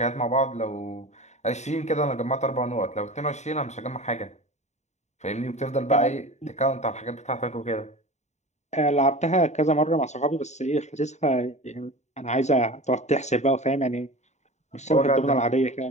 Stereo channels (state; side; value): late; right; 0.33 ms